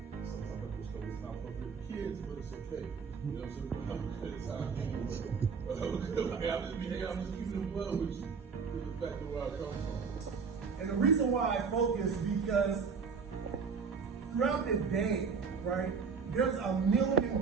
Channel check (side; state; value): left; quieter; 5.5 dB